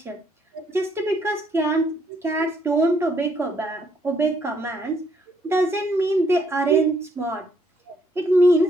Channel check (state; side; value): normal; both; correlation 0.70